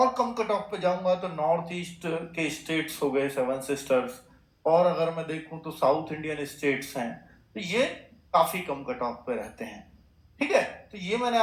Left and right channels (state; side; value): identical; both; correlation 1.00